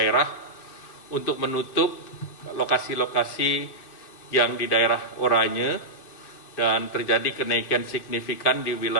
untuk menutup lokasi-lokasi yang di daerah oranye, dan terjadi kenaikan signifikan di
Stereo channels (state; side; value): late; right; 2.5 ms